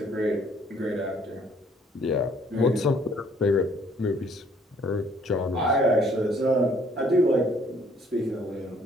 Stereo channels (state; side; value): normal; both; correlation 0.62